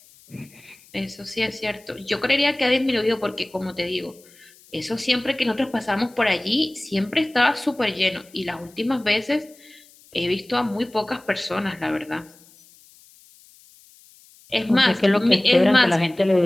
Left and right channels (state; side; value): noise; left; hiss, 26 dB below the sound